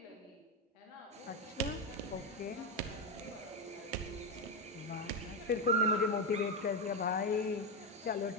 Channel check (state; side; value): normal; both; correlation 0.09